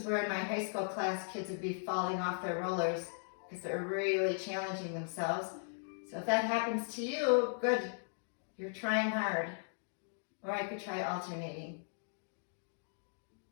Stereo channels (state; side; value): silent; right; digital silence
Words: where in my high school class, kids would be falling off their rollers because they're really challenging themselves. So if that happens to you, good. You're trying hard. Or I could try alternating.